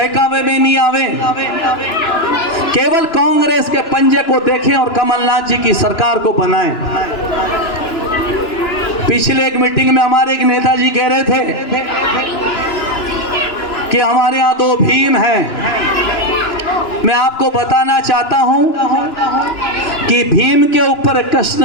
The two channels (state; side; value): late; right; 2.9 ms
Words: में नहीं आवे, केवल कांग्रेस के पंजे को देखें और कमलनाथ जी की सरकार को बनाएं। पिछले एक मीटिंग में हमारे एक नेताजी कह रहे थे कि हमारे यहाँ 2 भीम हैं। मैं आपको बताना चाहता हूं कि भीम के ऊपर